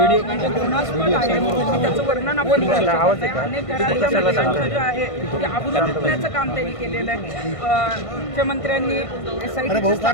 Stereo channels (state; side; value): late; right; 1.5 ms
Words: म्हणजे घृणास्पद आहे. त्याचं वर्णन आपण करू शकत नाही. अनेक घरातल्या महिलांचं जे आहे ते आबरू लुटण्याचं काम त्यांनी केलेलं आहे. मुख्यमंत्र्यांनी SITची